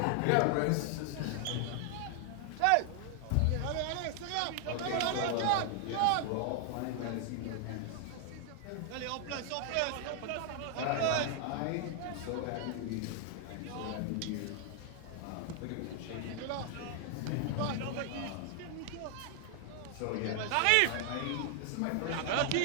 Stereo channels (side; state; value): both; different; correlation 0.00